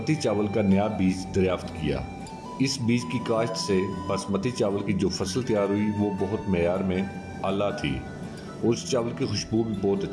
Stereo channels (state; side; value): identical; both; correlation 1.00